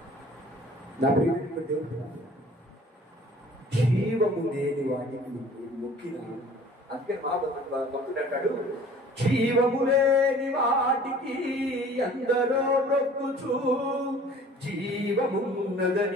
నా ప్రియమైన దేవుడు, జీవము లేని వాటికి మొక్కిన, అందుకే మా భక్తుడు అంటాడు, జీవము లేని వాటికి ఎందరో మొక్కుచు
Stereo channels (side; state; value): both; normal; correlation 0.49